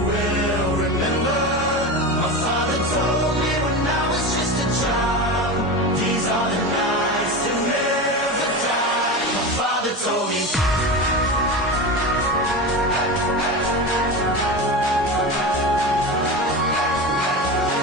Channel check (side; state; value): both; normal; correlation 0.24